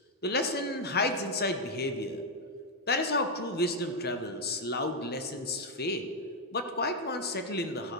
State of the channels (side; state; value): both; normal; correlation 0.01